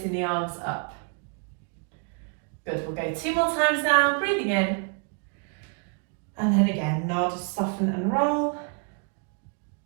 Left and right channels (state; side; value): quieter; left; 38.7 dB